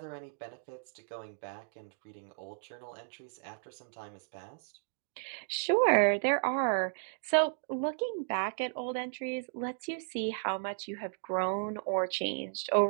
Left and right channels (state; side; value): silent; left; digital silence